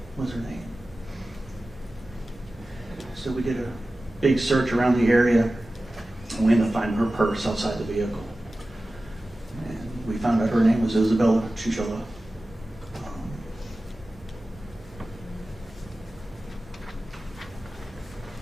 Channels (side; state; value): both; normal; correlation 0.96